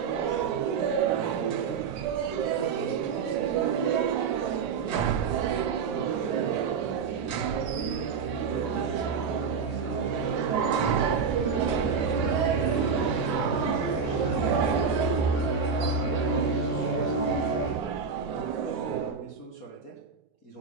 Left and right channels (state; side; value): quieter; left; 5.8 dB